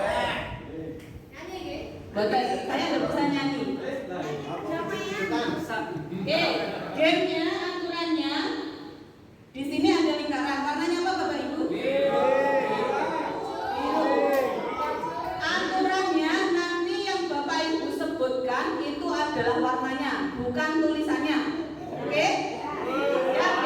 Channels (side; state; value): both; identical; correlation 1.00